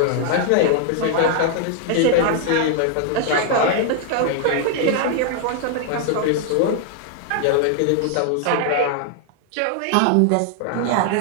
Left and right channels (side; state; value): both; different; correlation 0.00